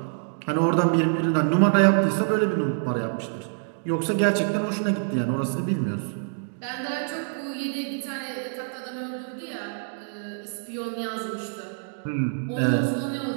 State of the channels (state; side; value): silent; left; digital silence